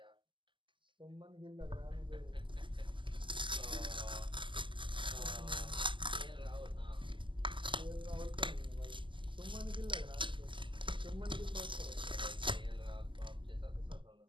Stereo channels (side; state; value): left; late; 0.24 ms